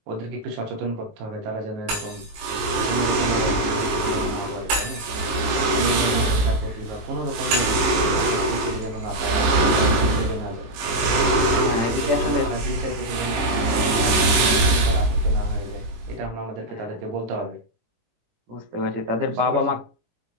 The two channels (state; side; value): late; left; 19 ms